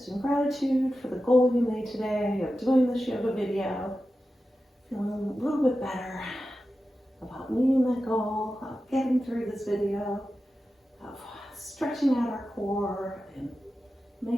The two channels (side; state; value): both; normal; correlation 0.92